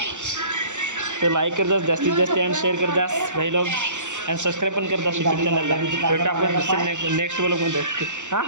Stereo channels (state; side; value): late; left; 0.85 ms